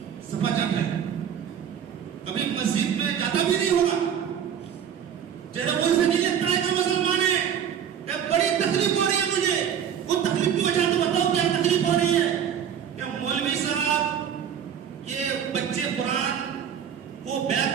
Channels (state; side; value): quieter; left; 8.7 dB